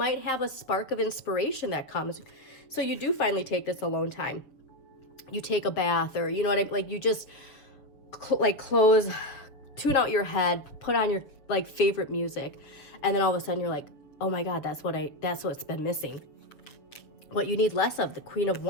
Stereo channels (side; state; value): right; late; 7.0 ms